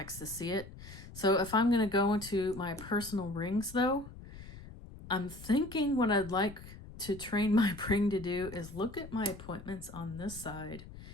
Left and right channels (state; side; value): noise; left; rumble, 15 dB below the sound